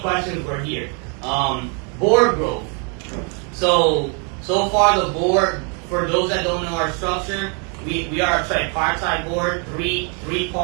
questions we're here. Board growth. So far the board, for those that don't know our structure, we are a tripartite board, three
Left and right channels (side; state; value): left; quieter; 37.6 dB